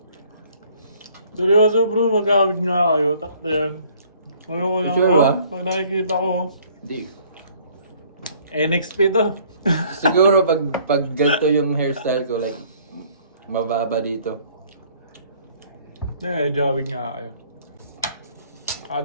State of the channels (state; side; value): inverted; both; correlation -0.58